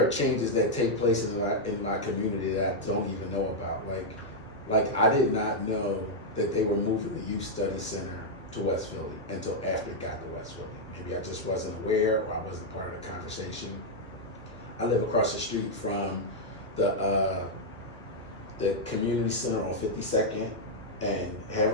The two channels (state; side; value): normal; both; correlation -0.02